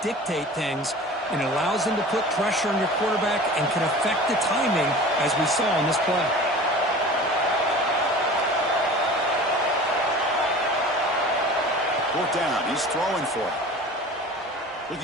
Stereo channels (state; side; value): normal; both; correlation 0.39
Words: things. And it allows them to put pressure on your quarterback and can affect the timing, as we saw on this play. Fourth down. He's throwing for it.